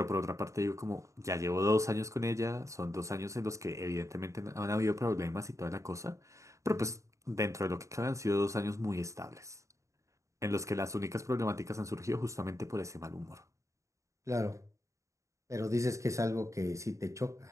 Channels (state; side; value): late; left; 0.15 ms